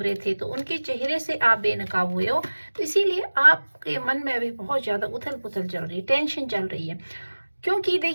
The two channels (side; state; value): both; inverted; correlation -1.00